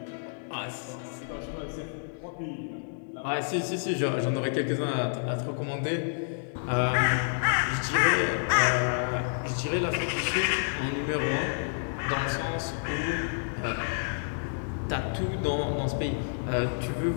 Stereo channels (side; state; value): right; silent; digital silence